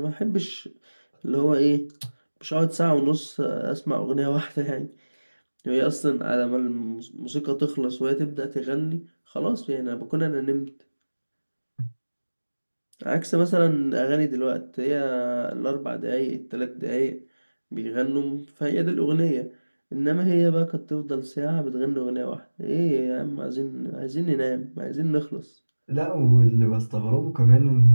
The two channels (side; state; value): both; inverted; correlation -1.00